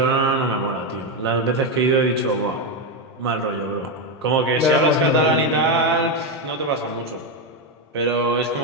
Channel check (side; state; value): both; normal; correlation 0.08